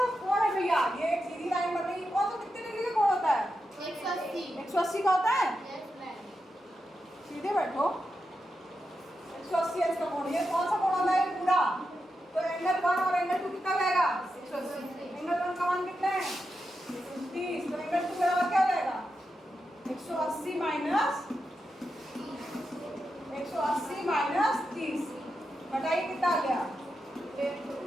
कोण है भैया? ये एक सीधी लाइन बन रही है, कौन सा कितने डिग्री का कोण होता है? 180 का होता है। सीधे बैठो, 180 इसका कोण। ये कौन सा कोण होता है? पूरा। तो एंगल 1 और एंगल 2 कितना जाएगा? 180। एंगल 1 का मान कितना है? 30। तो एंगल 2 बराबर क्या हो जाएगा? 180 माइनस 30। बताइए कितना आ गया?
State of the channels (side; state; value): both; normal; correlation 0.88